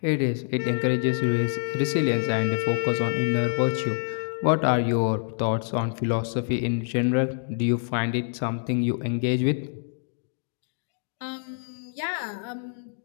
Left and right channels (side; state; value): right; silent; digital silence